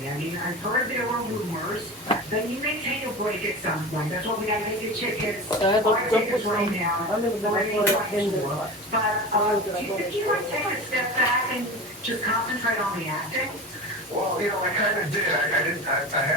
I mean, I've heard there were rumors that you may take a break at some point. That's why we gotta get your tickets. I Buy don't tickets put right some, now. I'm gonna go Ready for to it watch in the, more. But, do you think you might take a step back and just concentrate on the acting? Well, you know, I kind of did. I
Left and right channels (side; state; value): both; normal; correlation 0.30